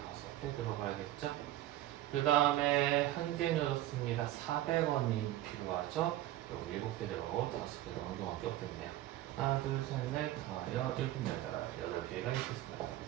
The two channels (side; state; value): left; quieter; 14.6 dB